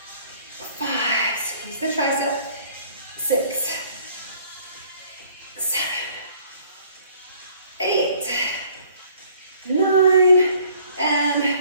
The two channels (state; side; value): inverted; both; correlation -0.57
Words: 5. Squeeze the tricep. 6. 7. 8. 9. And